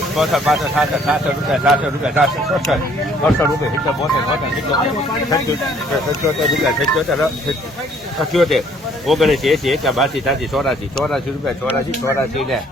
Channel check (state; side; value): normal; both; correlation 0.61